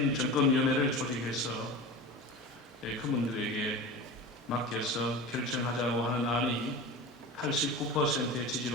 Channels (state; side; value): normal; both; correlation 0.31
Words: 정권위원회를 조직해서 그분들에게 맡겨서 결정하자고 하는 안이 89%의